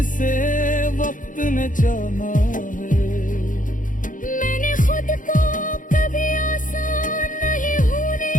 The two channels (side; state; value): right; late; 0.38 ms